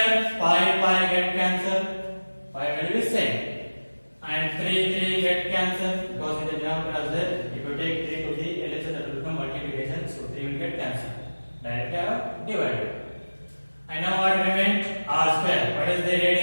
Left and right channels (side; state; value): both; inverted; correlation -1.00